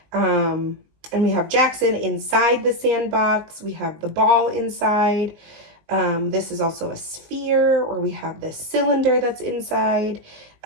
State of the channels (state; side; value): late; left; 19 ms